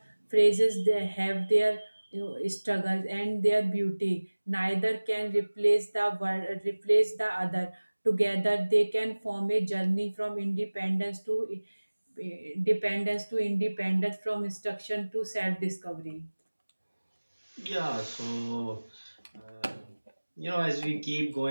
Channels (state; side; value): inverted; both; correlation -1.00